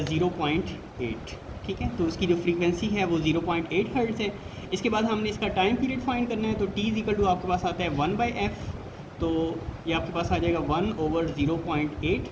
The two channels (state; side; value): identical; both; correlation 1.00